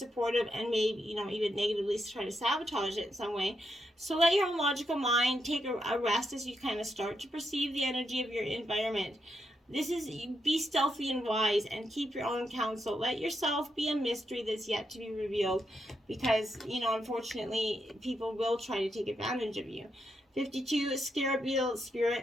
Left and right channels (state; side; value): normal; both; correlation 0.82